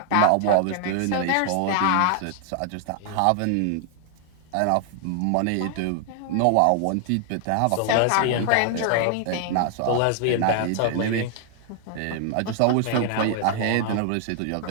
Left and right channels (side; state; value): both; different; correlation 0.00